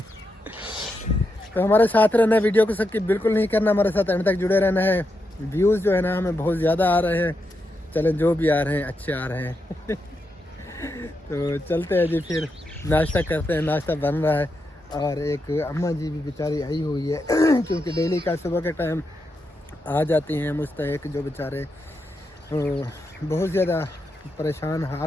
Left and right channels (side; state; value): both; normal; correlation 0.85